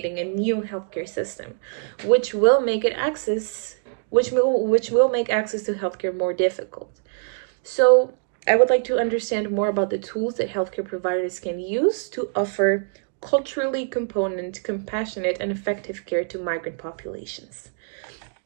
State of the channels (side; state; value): left; silent; 63 dB below the other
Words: a new healthcare system, which will make access to healthcare more difficult. So, I would like to understand more about the tools that healthcare providers can use to offer culturally component, compassionate, and effective care to migrant populations.